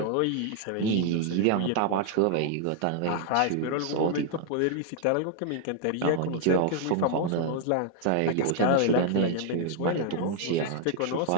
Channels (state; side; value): different; both; correlation 0.00